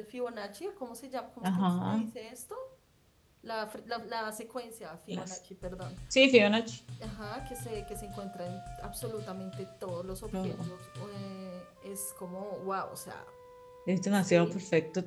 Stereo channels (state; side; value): identical; both; correlation 1.00